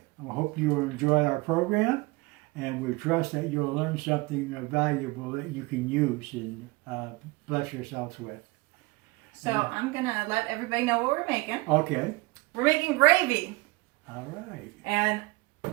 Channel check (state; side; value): quieter; left; 24.3 dB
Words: I hope you enjoy our program, and we trust that you'll learn something valuable that you can use and bless yourselves with. So I'm going to let everybody know what we're making. Okay. We're making gravy. All right. And